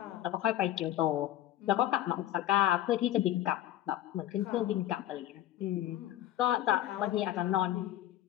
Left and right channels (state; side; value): quieter; right; 13.2 dB